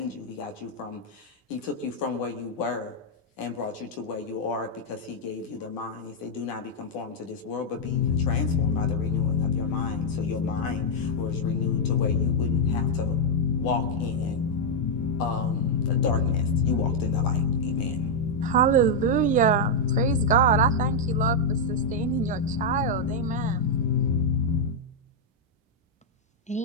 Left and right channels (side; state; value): both; normal; correlation -0.02